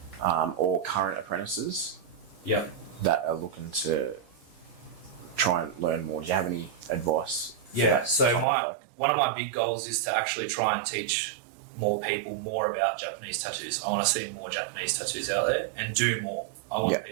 or current apprentices that are looking to try and learn more. Do you have any advice? So one of my big goals is to actually try and teach more people more about Japanese tattoos. I want to see more Japanese tattoos out there and do more. I want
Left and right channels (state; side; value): drops out; left; at 8.5 s